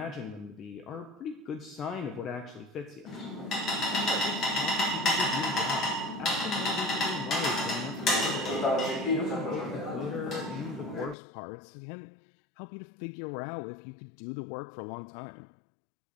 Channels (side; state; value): right; drops out; at 11.2 s